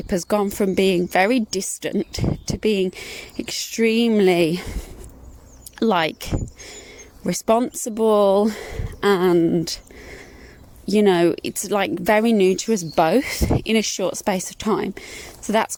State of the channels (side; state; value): both; identical; correlation 1.00